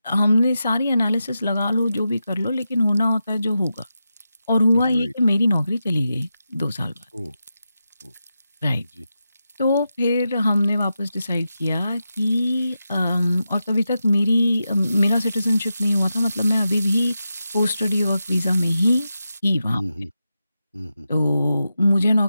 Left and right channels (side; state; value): both; inverted; correlation -0.89